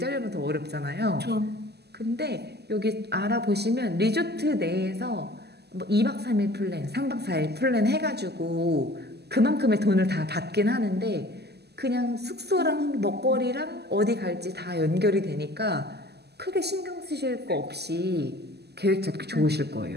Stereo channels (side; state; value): left; late; 0.48 ms